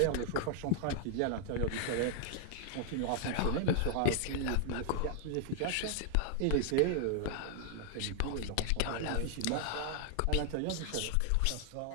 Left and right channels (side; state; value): both; different; correlation 0.00